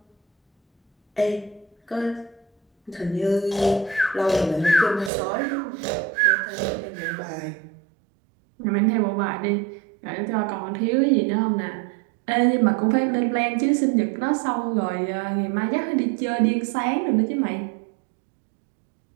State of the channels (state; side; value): drops out; left; at 5.1 s